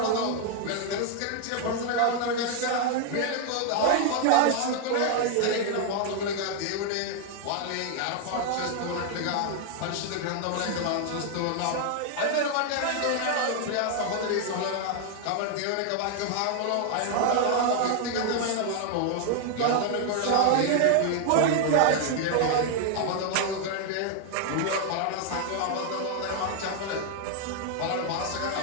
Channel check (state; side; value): different; both; correlation 0.00